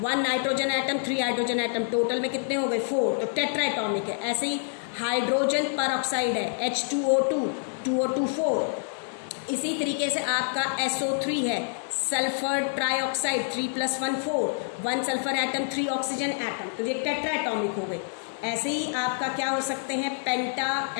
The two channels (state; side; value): silent; right; digital silence